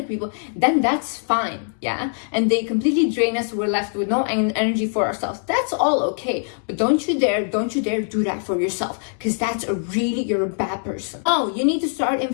people, then that's fine, yeah? And they completely drain us, we're left with no energy for ourselves. That's all okay. But don't you dare do that for yourself, because you're a bad person. Oh, you need to start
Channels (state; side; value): silent; right; digital silence